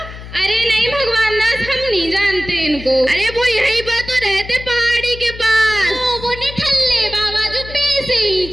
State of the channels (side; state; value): left; noise; hum, 13 dB below the sound